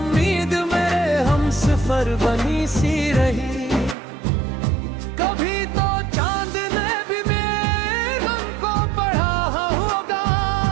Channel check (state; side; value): drops out; left; at 4.0 s